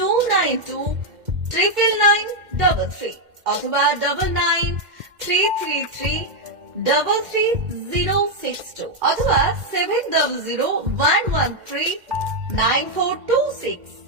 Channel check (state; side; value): late; left; 2.1 ms